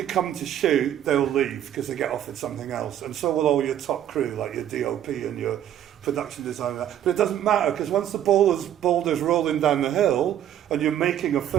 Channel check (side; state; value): left; quieter; 10.8 dB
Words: come to shoot, they'll leave because they get offered something else. And so will all your top crew, like your DOP and your production designer. But it doesn't matter, because once the boulder's rolling down the hill and you're making a